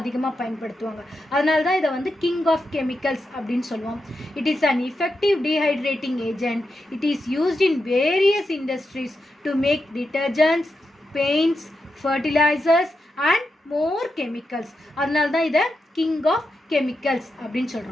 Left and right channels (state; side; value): normal; both; correlation 0.87